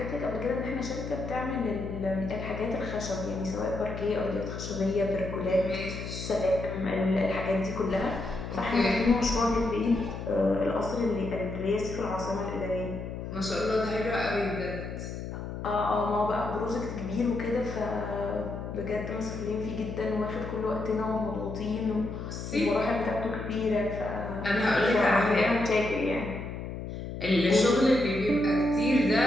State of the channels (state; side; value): noise; left; hum, 7 dB below the sound